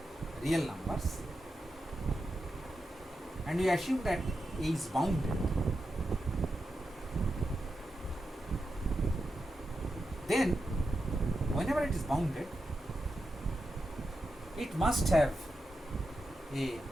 real numbers, and we assume that A is bounded, then whenever it is bounded, it must have a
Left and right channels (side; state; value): both; normal; correlation 0.88